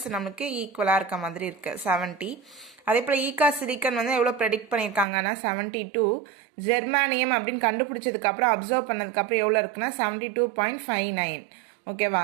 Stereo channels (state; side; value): drops out; left; at 5.1 s